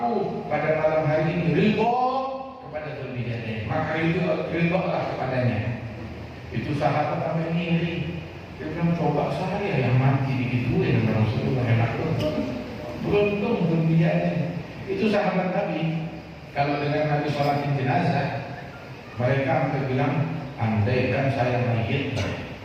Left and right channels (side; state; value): both; identical; correlation 1.00